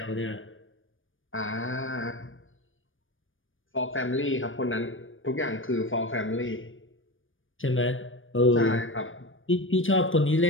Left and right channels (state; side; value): late; right; 0.58 ms